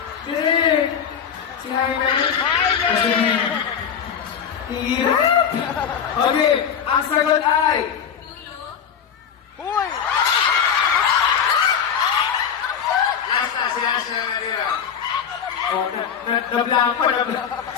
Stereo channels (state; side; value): quieter; right; 7.6 dB